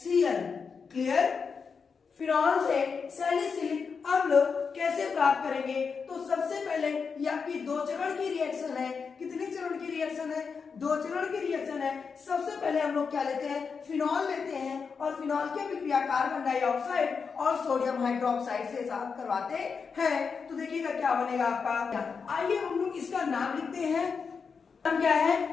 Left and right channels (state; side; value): quieter; right; 5.6 dB